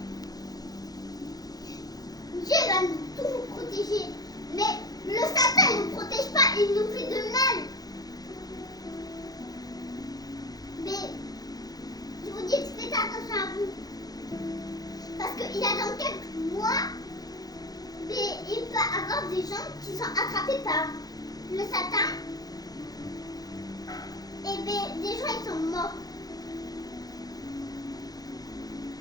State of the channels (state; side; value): late; right; 0.19 ms